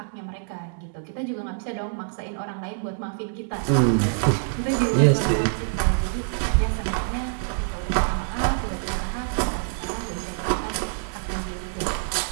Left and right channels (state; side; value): silent; left; digital silence